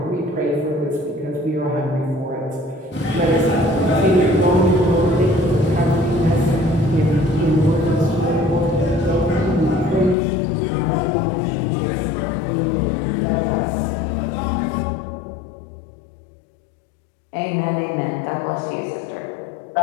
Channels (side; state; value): right; drops out; at 10.2 s